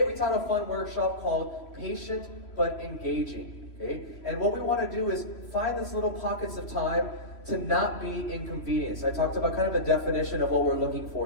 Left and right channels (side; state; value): right; late; 3.0 ms